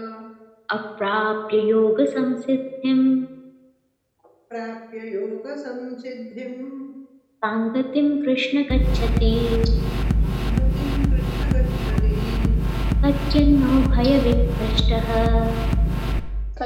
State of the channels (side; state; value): both; identical; correlation 1.00